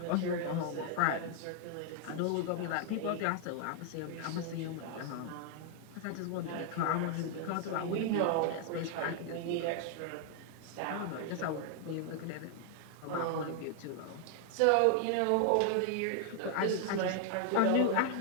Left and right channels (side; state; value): both; different; correlation 0.00